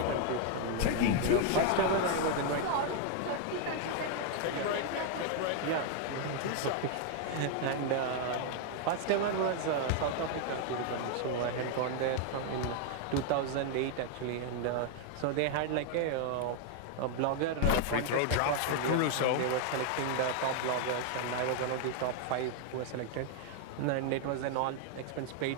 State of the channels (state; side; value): different; both; correlation 0.00